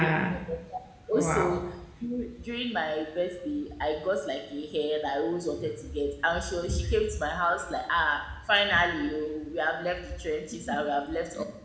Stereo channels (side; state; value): both; identical; correlation 1.00